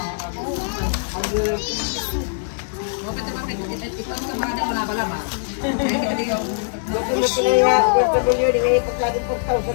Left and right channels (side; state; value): right; silent; digital silence